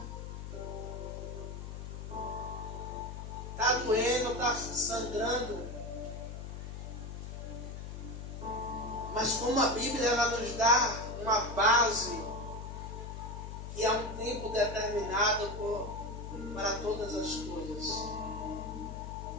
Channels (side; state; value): left; noise; hum, 8 dB below the sound